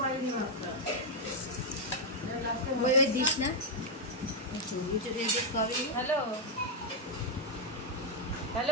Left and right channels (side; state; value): both; normal; correlation -0.02